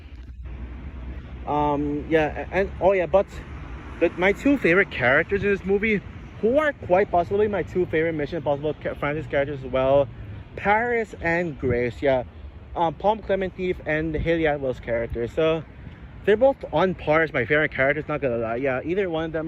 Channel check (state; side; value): identical; both; correlation 1.00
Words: and oh yeah, but my two favorite characters in this movie, who are quite possibly my two favorite Mission Impossible franchise characters as well, Paris and Grace. Yeah, Palm Clemente and Haley Atwell's characters. So they're both on par as my favorite characters. Not gonna lie. Yeah, either one of